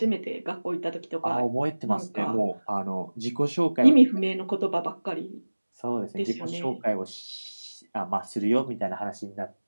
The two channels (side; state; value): both; inverted; correlation -1.00